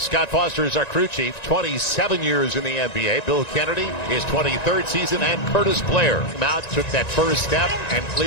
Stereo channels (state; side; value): late; right; 1.9 ms